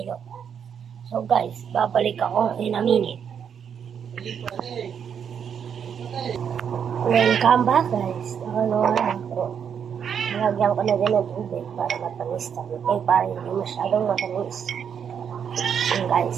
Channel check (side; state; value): left; quieter; 7.7 dB